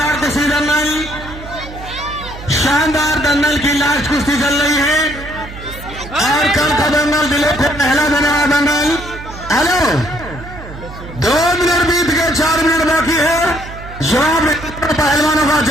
कुश्ती दंगल, शानदार दंगल की लास्ट कुश्ती चल रही है और कल का दंगल दिले को पहला देने वाला दंगल। हेलो, 2 मिनट बीत गए, 4 मिनट बाकी है। जवाब पहलवानों का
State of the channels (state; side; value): noise; right; hum, 13 dB below the sound